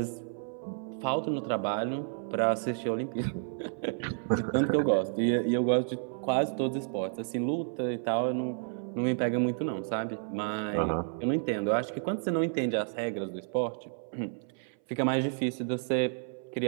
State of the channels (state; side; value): silent; left; 57 dB below the other